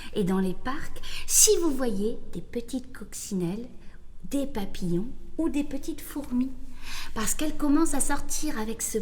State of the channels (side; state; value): both; identical; correlation 1.00